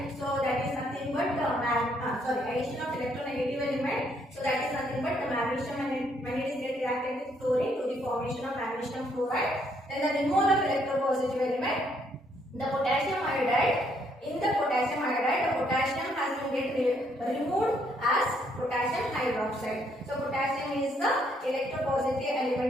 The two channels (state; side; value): normal; both; correlation 0.70